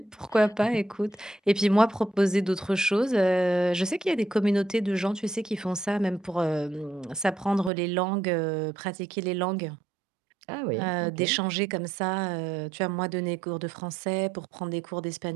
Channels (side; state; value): left; drops out; at 7.7 s